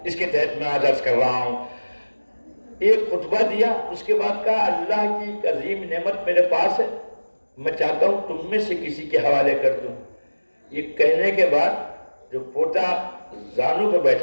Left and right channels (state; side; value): inverted; both; correlation -1.00